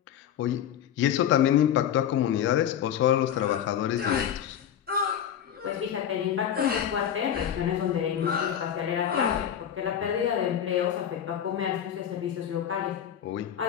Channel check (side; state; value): right; quieter; 9.6 dB